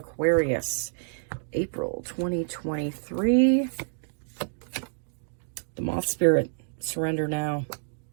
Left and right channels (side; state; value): left; silent; digital silence